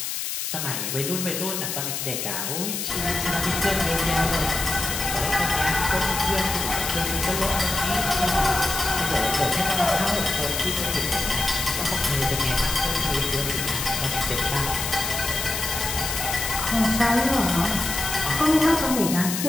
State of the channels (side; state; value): left; noise; hiss, 3 dB below the sound